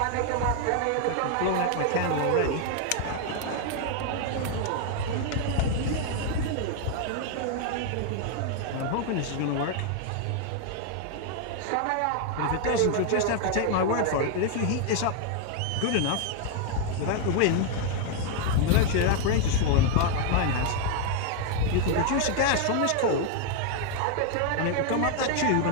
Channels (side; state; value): both; different; correlation 0.00